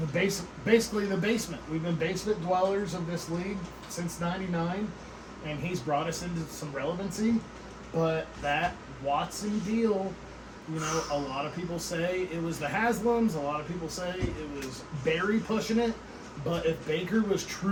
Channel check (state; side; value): identical; both; correlation 1.00